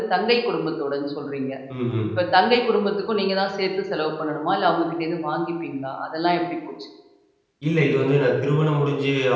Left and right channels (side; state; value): both; identical; correlation 1.00